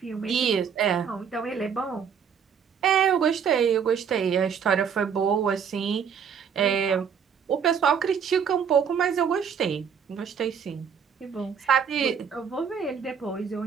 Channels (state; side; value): quieter; left; 7.2 dB